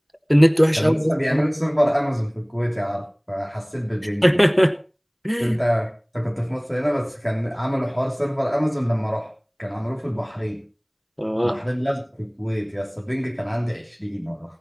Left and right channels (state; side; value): identical; both; correlation 1.00